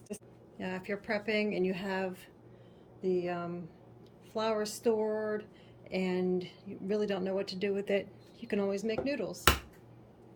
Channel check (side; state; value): both; identical; correlation 1.00